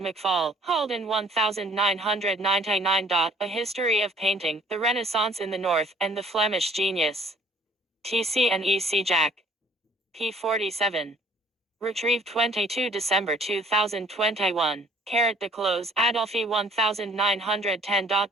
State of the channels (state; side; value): normal; both; correlation 0.57